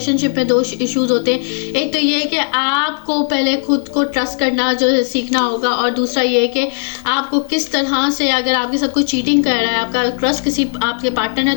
में 2 इश्यूज़ होते हैं। एक तो ये है कि आपको पहले खुद को ट्रस्ट करना जो है सीखना होगा, और दूसरा ये है कि आपको किस तरह से, अगर आपके साथ कोई चीटिंग कर रहा है, आपका ट्रस्ट किसी आपके पार्टनर ने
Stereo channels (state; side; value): silent; right; 67 dB below the other